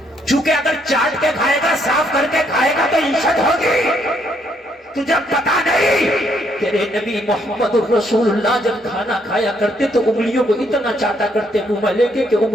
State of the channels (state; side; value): normal; both; correlation 0.71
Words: چونکہ اگر چاٹ کے کھائے گا صاف کر کے کھائے گا تو عزت ہوگی۔ تجھے پتا نہیں تیرے نبی محمد رسول اللہ جب کھانا کھایا کرتے تو انگلیوں کو اتنا چاٹا کرتے منہ میں لے کے کہ